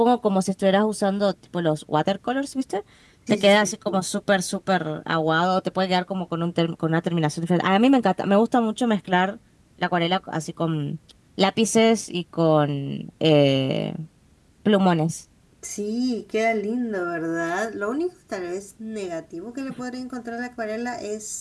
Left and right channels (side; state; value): both; identical; correlation 1.00